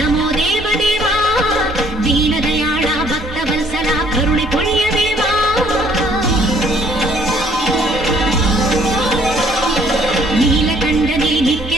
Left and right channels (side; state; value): both; normal; correlation 0.62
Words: देवदेवा दीनदयाळा भक्तवत्सला करुणे पुण्यदेवा नीलकण्ठने